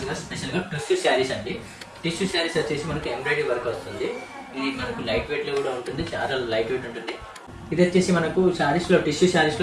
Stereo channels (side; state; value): both; identical; correlation 1.00